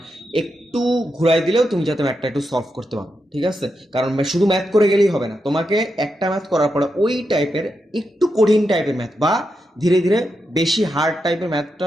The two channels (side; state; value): both; normal; correlation 0.85